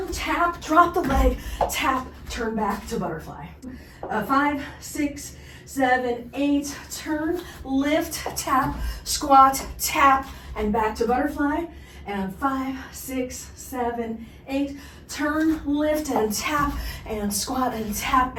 tap, drop the leg, tap, turn back to butterfly. 5, 6, 7, 8, turn, lift, tap, squat, tap, and back to butterfly. And 5, 6, 7, 8, turn, lift, and tap, and squat, and tap,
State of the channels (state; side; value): identical; both; correlation 1.00